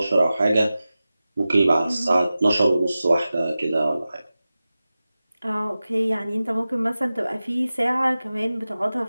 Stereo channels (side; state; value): both; inverted; correlation -0.95